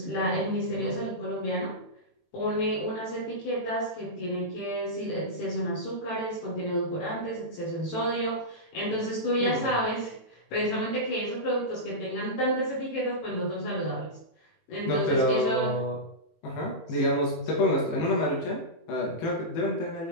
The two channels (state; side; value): late; right; 18 ms